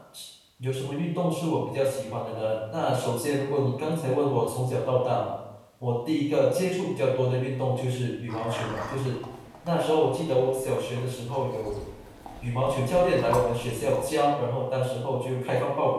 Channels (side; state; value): both; identical; correlation 1.00